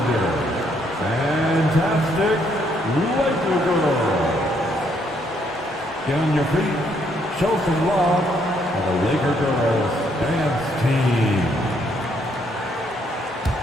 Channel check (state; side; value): normal; both; correlation 0.71